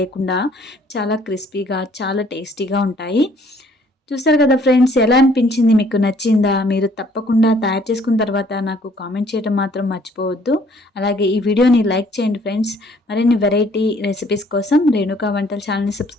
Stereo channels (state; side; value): normal; both; correlation 0.60